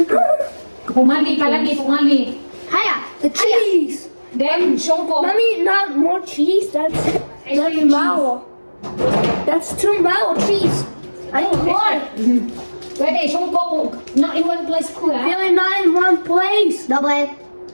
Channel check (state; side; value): inverted; both; correlation -1.00